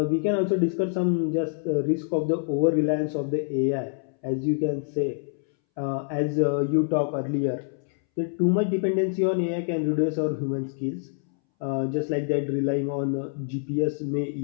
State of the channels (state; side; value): silent; right; 61 dB below the other